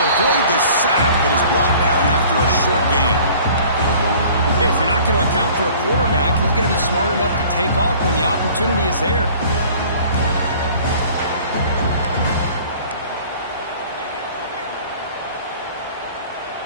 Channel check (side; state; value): both; inverted; correlation -0.49